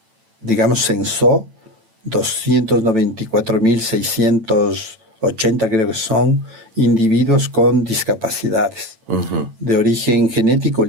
digamos, censó 294.680, creo que son, individuos con discapacidades. De origen genético,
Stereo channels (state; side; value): late; left; 9.0 ms